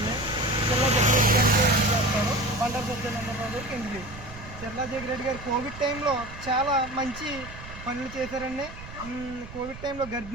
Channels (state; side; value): noise; right; rumble, 14 dB below the sound